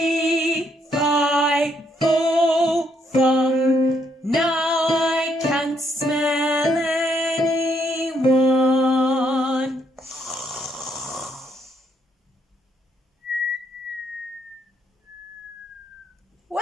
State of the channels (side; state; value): both; normal; correlation 0.74